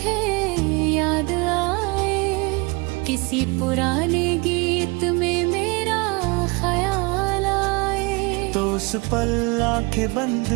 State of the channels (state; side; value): quieter; left; 27.6 dB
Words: याद आए, किसी पुराने गीत में मेरा ख्याल आए, तो उस पल आंखें बंद